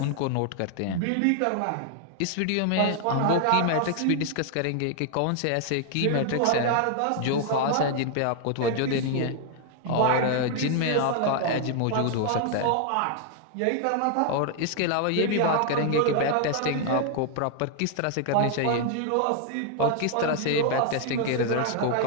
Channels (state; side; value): different; both; correlation 0.00